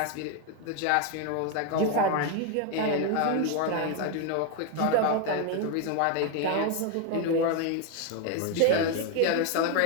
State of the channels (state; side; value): different; both; correlation 0.01